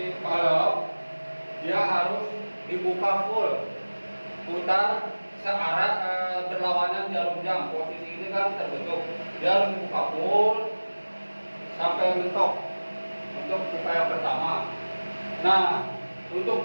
valve dia harus dibuka full, putar searah berlawanan jarum jam. Posisi ini kan terbentuk, dia harus dibuka full sampai mentok untuk pipa yang pertama. Nah, untuk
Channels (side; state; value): both; inverted; correlation -1.00